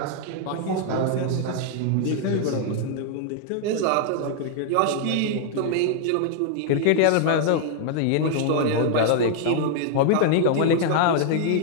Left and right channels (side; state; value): both; different; correlation 0.00